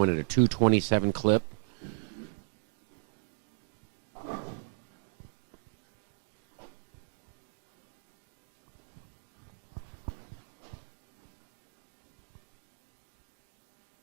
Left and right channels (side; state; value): left; silent; digital silence